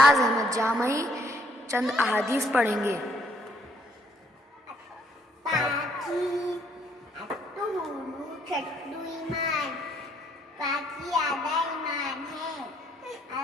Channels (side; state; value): both; normal; correlation 0.67